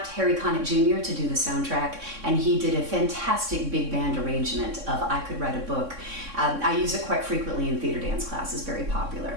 Harry Connick Jr. to do the soundtrack, and he did a fantastic big band arrangement of I Could Write a Book. I use it quite frequently in theater dance classes, very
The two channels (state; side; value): late; left; 3.6 ms